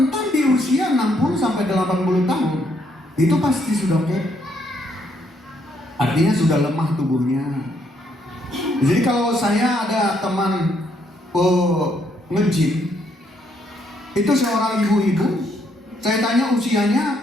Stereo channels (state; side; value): normal; both; correlation 0.72